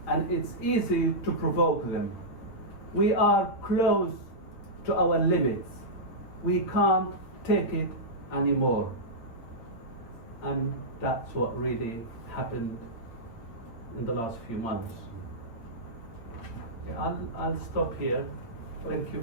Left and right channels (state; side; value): late; right; 8.8 ms